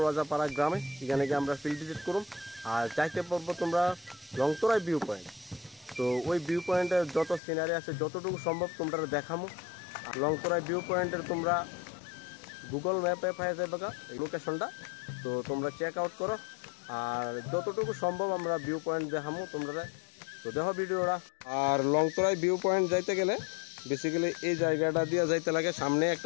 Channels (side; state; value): right; drops out; at 7.4 s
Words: রাজাপাড়া গ্রামে। এখানে গিয়ে আমরা ফিল্ড ভিজিট করুম আর যাইতে পারবো তোমরা লংতরাই ভিউ পয়েন্ট। তো ওই ভিউ পয়েন্টের যত সিনারি আছে যতটুকু সম্ভব তোমরা দেখামো। আর লংতরাই ভিউ পয়েন্টের তোমরা গুগল ম্যাপে পাই যাবে এই লোকেশনটা, তো তোমরা চেক আউট করো আর যতটুকু সম্ভব আমরা ভিউ পয়েন্ট দেখামো তোমরা। তো দেখো ভিডিওটা। আর লংতরাই ভিউ পয়েন্ট যাইতে গেলে বেসিক্যালি এই জায়গাটা দিয়ে যাইতে লাগে। সামনে